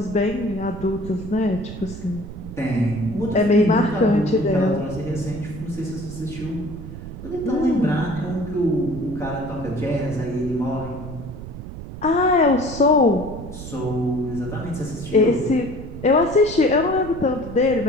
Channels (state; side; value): noise; right; rumble, 11 dB below the sound